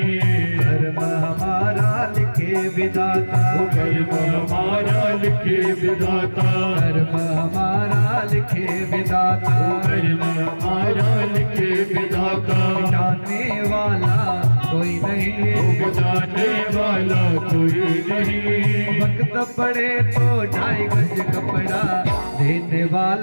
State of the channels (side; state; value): both; inverted; correlation -1.00